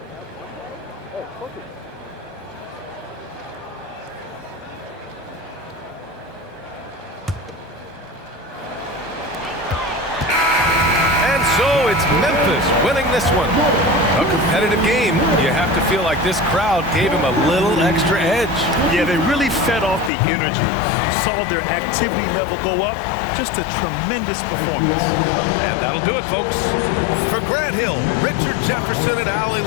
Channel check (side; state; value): right; drops out; at 20.1 s